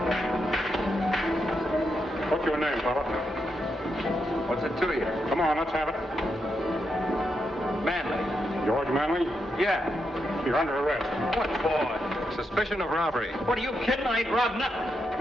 What's your name, fella? What's it to you? Come on, let's have it. Manley. George Manley? Yeah. You're under arrest. What for? Suspicion of robbery. What, are you kidding? I ain't robbed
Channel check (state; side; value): normal; both; correlation 0.83